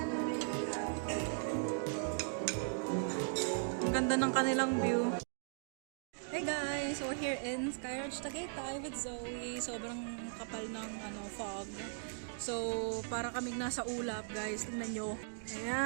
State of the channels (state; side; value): silent; left; digital silence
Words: Ang ganda ng kanilang view. Hey guys, we're here in Sky Ranch Tagaytay with Zoe. Sobrang kapal ng fog. So, para kaming nasa ulap, guys. Tingnan nyo.